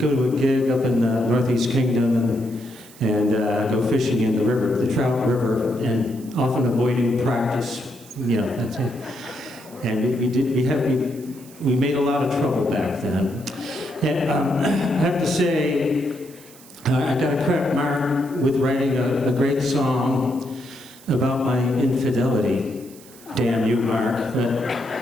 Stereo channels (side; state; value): right; noise; hiss, 22 dB below the sound